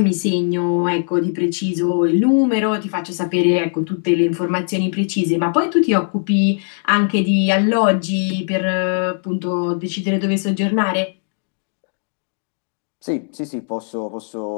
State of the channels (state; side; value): silent; right; digital silence